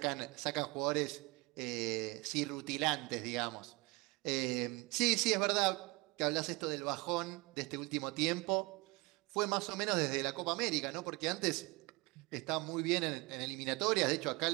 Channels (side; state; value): left; quieter; 24.9 dB